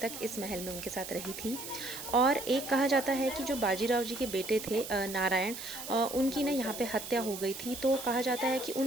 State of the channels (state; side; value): noise; right; hiss, 9 dB below the sound